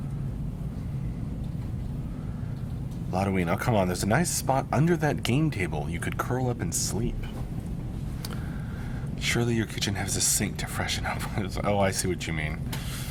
Lotoween, oh come on, there's a nice spot under that game table. You could curl up and sleep. Surely your kitchen has a sink to freshen up. Oh, I see what you mean.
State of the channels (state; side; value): identical; both; correlation 1.00